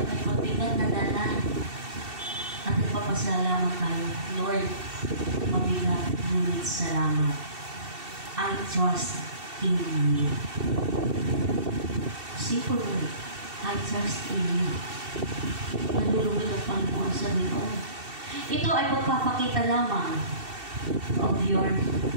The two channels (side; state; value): left; late; 2.7 ms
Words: ay may mabigat na dala, at nagpapasalamat tayo, Lord, mabigat, ngunit salamat. I trust in you. Simple word. I trust in you. Nalulugod ang Panginoon sa Panginoon. Ito ay pagpapakita lamang of your